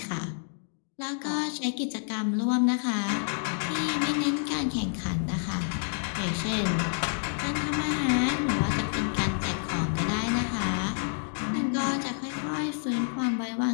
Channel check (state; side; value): silent; right; 59 dB below the other